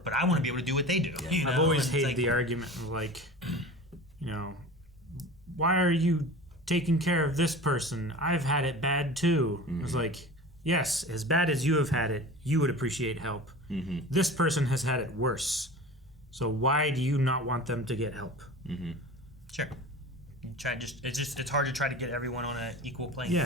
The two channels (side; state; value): both; normal; correlation 0.36